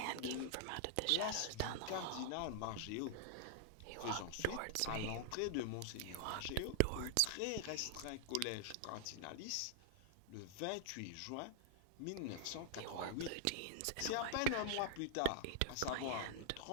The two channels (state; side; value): different; both; correlation -0.01